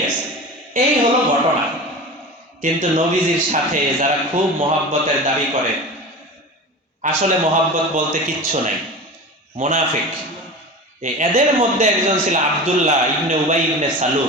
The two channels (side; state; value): both; normal; correlation 0.31